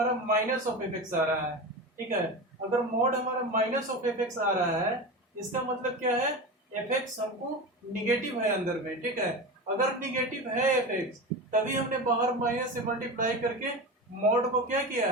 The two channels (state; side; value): normal; both; correlation 0.26